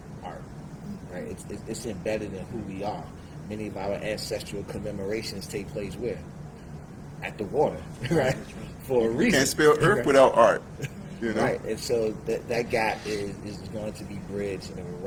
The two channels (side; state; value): both; identical; correlation 1.00